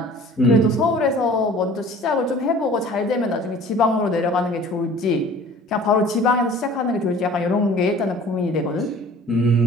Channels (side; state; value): both; normal; correlation 0.47